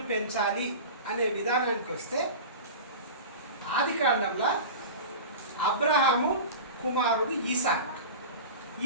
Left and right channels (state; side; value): inverted; both; correlation -0.31